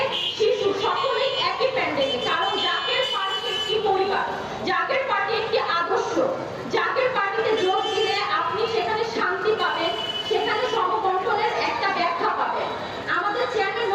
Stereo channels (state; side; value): identical; both; correlation 1.00